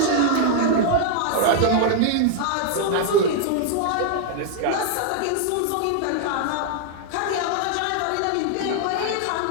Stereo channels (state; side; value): different; both; correlation 0.00